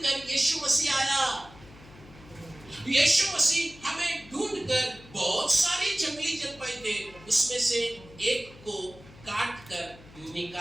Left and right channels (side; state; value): left; noise; hum, 21 dB below the sound